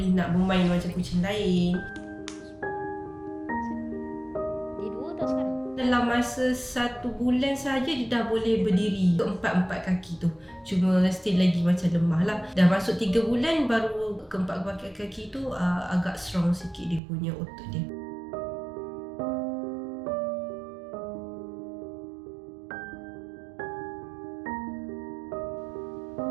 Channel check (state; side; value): drops out; left; at 17.0 s